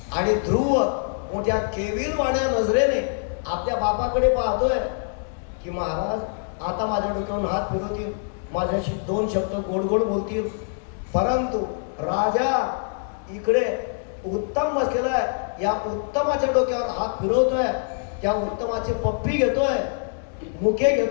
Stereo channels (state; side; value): silent; right; digital silence